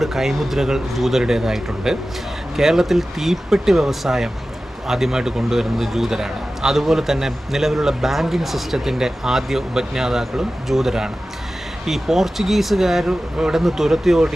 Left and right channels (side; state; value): both; normal; correlation 0.95